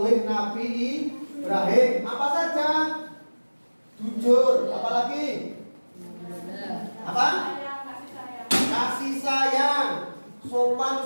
Nabi Ibrahim. Apa saja? Jujur, apalagi? Apa? Kasih sayang, sopan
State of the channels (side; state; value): both; inverted; correlation -1.00